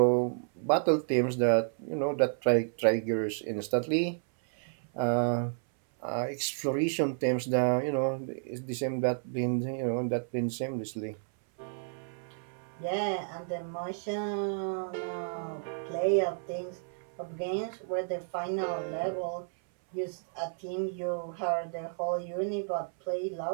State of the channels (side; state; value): left; silent; 57 dB below the other